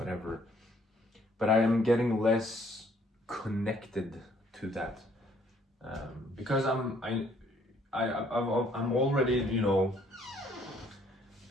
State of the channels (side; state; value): both; normal; correlation 0.64